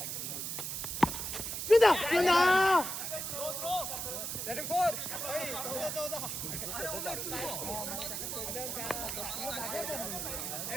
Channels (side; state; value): right; noise; hiss, 4 dB below the sound